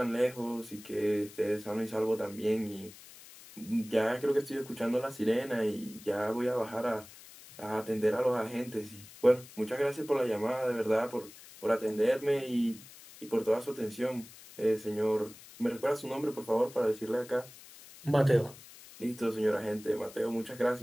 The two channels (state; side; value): noise; left; hiss, 19 dB below the sound